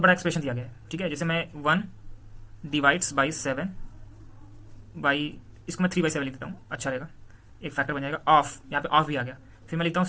बड़ा एक्सप्रेशन दिया गया है, ठीक है, जैसे मैं 1 डिवाइड्स बाई 7 बाई, इसको मैं 3/7 लिख देता हूँ, अच्छा रहेगा, एक फैक्टर बन जाएगा। ऑफ, यहाँ पे ऑफ भी आ गया, फिर मैं लिखता हूँ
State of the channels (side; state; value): both; identical; correlation 1.00